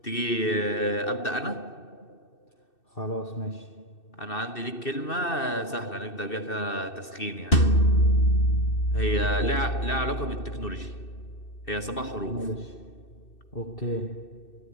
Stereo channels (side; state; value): right; late; 2.6 ms